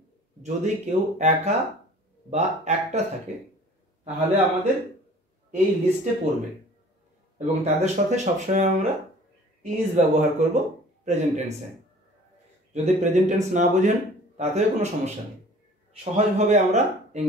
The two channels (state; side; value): normal; both; correlation 0.48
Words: যদি কেউ একা বা একটা থাকে তাহলে আমাদের এই লিস্টে পড়বে এবং তাদের সাথে সবসময় আমরা ইজ ব্যবহার করব প্রেজেন্ট টেন্সে। যদি প্রেজেন্ট টেন্স না বোঝেন তাতেও কোনো সমস্যা নেই, সহজভাবে আমরা